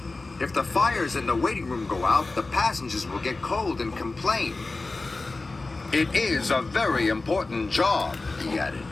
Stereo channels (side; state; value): right; quieter; 3.4 dB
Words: "If the fires in the waiting room go out, the passengers will get cold and complain." "It is a very important job," he added.